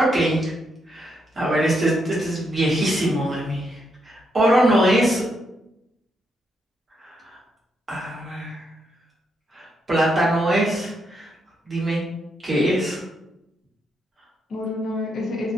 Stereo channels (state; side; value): normal; both; correlation 0.79